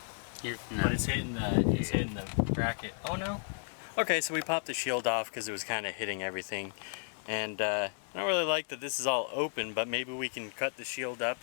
No. But it's hitting the bracket. Oh no. Okay, so we popped the shield off because it was kind of hitting everything, and I don't really like that this is all open. But maybe we can cut the shield up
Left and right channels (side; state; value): right; silent; digital silence